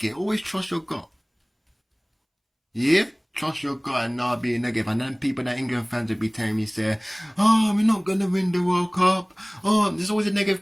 it. Always trust your gut. Yeah? Trust your gut and not be negative. And then people that England fans will be telling me, say, oh, we're not going to win the World Cup. Oh, there's always a negative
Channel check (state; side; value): identical; both; correlation 1.00